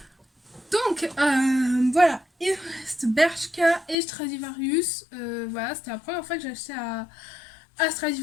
Donc voilà, il reste Bershka et Stradivarius. Voilà, c'était la première fois que j'achetais à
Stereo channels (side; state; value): right; drops out; at 4.0 s